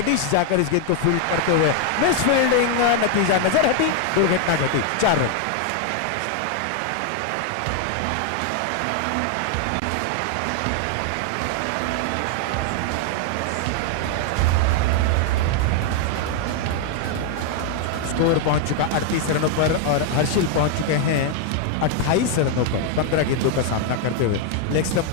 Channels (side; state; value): both; different; correlation 0.00